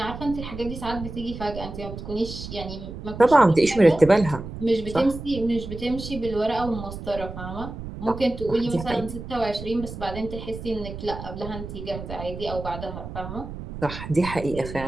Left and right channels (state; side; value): noise; right; rumble, 10 dB below the sound